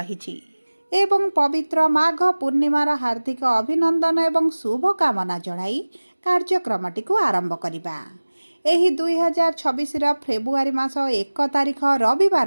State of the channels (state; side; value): inverted; both; correlation -1.00